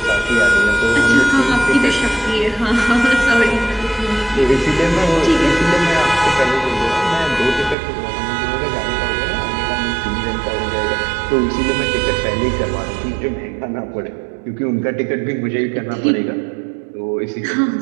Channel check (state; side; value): drops out; left; at 7.8 s